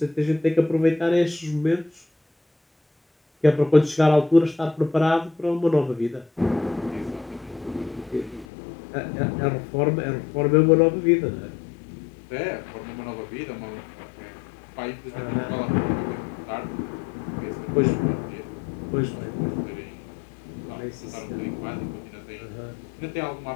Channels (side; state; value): right; drops out; at 8.5 s